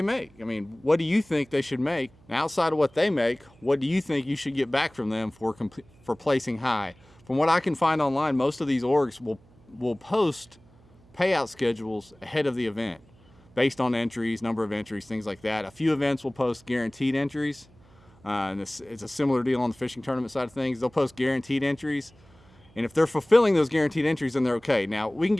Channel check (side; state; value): right; noise; hum, 28 dB below the sound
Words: make? I mean, what do you think they should make? And outside of what they make, what do you think you should get back from them for placing high? From what I can find online, most of these orgs will post payout schedules ahead of the event based on entries, number of entries, things like that. A few events will post guaranteed entries. And it's a similar deal on the fishing tournament side of things. They'll post guaranteed entries. And if they're fulfilling those guaranteed entries, then they're okay. Now, we can